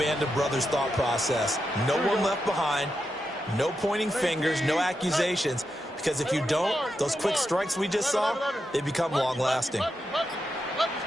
of Brothers thought process. No one left behind, no pointing fingers, no accusations, because if you don't, those quick strikes we just saw, they become long-lasting.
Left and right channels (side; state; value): both; normal; correlation 0.87